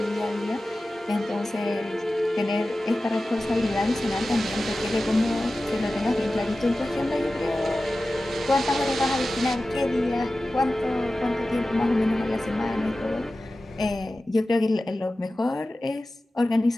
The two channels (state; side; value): normal; both; correlation 0.95